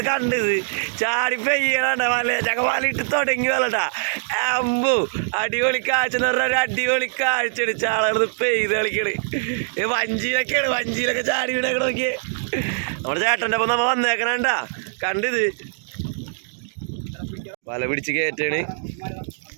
കണ്ടത് ചാടി പെയ്യണ വല ചക്ക വലയിട്ട് തുടങ്ങി വല്ലട്ടാ. അമ്പു അടിപൊളി കാഴ്ച എന്ന് പറഞ്ഞാൽ ഒരു അടിപൊളി കാഴ്ചയാണ്. ചാളത് പെയ്ത് കളിക്കണ്. വഞ്ചിയിലൊക്കെ ചാടി വീടൊക്കെ നോക്കിയേ. നമ്മുടെ ചേട്ടൻ്റെ ഒപ്പം നമ്മ വന്നേക്കണണ്ടാ കണ്ടിത് വല പിടിച്ച് കയറ്റാണ്.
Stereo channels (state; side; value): silent; left; digital silence